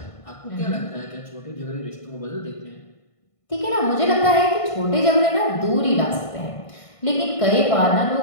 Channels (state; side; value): late; right; 1.5 ms